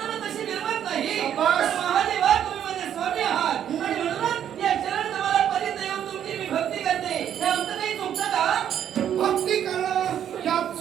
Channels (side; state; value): left; quieter; 9.8 dB